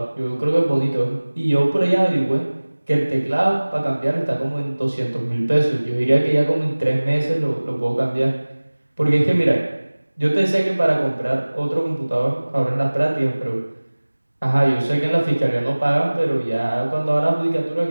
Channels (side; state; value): both; inverted; correlation -1.00